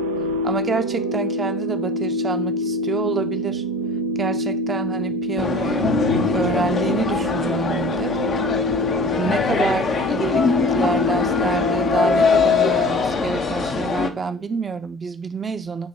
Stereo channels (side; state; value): both; normal; correlation 0.42